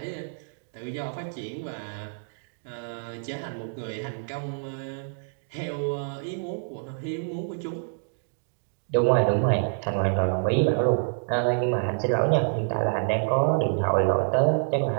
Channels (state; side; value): silent; left; digital silence